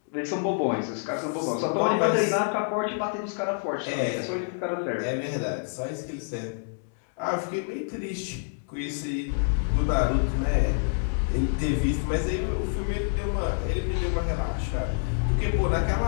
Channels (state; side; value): silent; right; digital silence